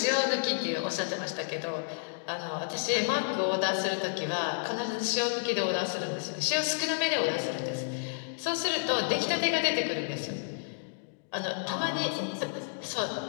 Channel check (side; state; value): right; silent; digital silence